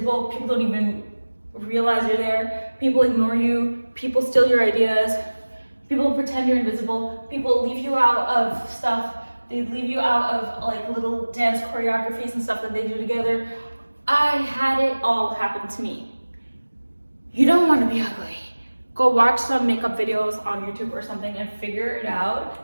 People don't even realize you're there. People ignore you. People steal your ideas. People pretend you're invisible. People leave you out of stuff. They leave you out of like little dance choreographies and stuff that they do together. I had it all happen to me. You don't want to be ugly. Go watch some makeup videos on YouTube or something and figure it out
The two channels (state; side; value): inverted; both; correlation -1.00